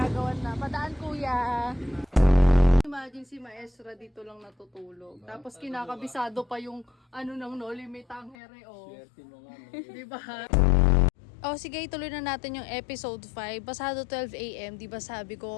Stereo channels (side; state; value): right; drops out; at 8.3 s